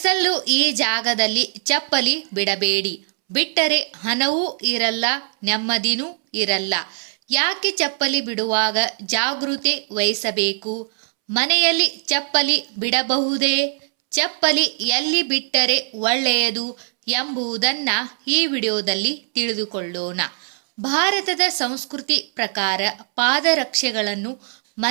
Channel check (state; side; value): silent; left; 65 dB below the other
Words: ಈ ಜಾಗದಲ್ಲಿ ಚಪ್ಪಲಿ ಬಿಡಬೇಡಿ. ಬಿಟ್ಟರೆ ಹಣವೂ ಇರಲ್ಲ, ನೆಮ್ಮದಿನೂ ಇರಲ್ಲ. ಯಾಕೆ ಚಪ್ಪಲಿ ಬಿಡುವಾಗ ಜಾಗೃತಿ ವಹಿಸಬೇಕು? ಮನೆಯಲ್ಲಿ ಚಪ್ಪಲಿ ಬಿಡಬಹುದೇ? ಚಪ್ಪಲಿ ಎಲ್ಲಿ ಬಿಟ್ಟರೆ ಒಳ್ಳೆಯದು ಎಂಬುದನ್ನ ಈ ವಿಡಿಯೋದಲ್ಲಿ ತಿಳಿದುಕೊಳ್ಳೋಣ. ಭಾರತದ ಸಂಸ್ಕೃತಿ ಪ್ರಕಾರ ಪಾದರಕ್ಷೆಗಳನ್ನು